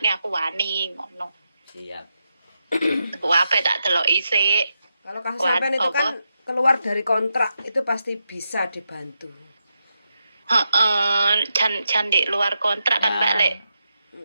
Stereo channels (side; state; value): both; inverted; correlation -0.86